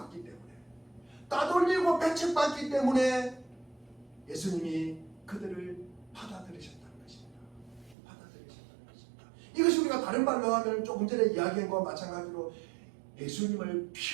때문에 예수님이 그들을 받아들이셨다는 것입니다. 이것이 우리가 다른 말로 하면 조금 전에 이야기한 것과 마찬가지로 예수님을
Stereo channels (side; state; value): left; drops out; at 8.0 s